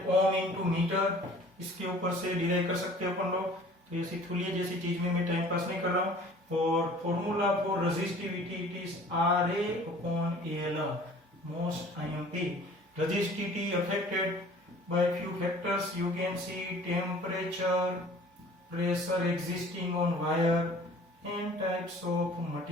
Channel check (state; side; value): normal; both; correlation 0.49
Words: ohm into meter. इसके ऊपर से derive कर सकते हो अपन लोग. तो ऐसी थुलिये जैसी चीज में मैं टाइम पास नहीं कर रहा हूँ. और formula for resistivity it is RA upon AL. Most IMP. Resistivity affected by few factors. You can see temperature, pressure existing on wire, and types of